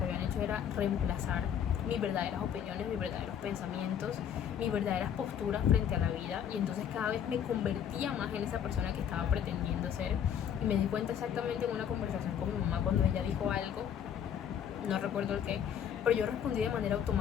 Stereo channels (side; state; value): right; quieter; 8.9 dB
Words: habían hecho era reemplazar mis verdaderas opiniones, mis verdaderos pensamientos, mis verdaderas posturas frente a la vida, y entonces cada vez me convertía más en esa persona que estaba pretendiendo ser. Y me di cuenta exactamente en una conversación con mi mamá, cuando ella dijo algo, no recuerdo el qué, pero yo respondí de manera